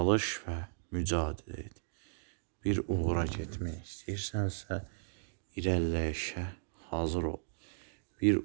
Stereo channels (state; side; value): silent; left; digital silence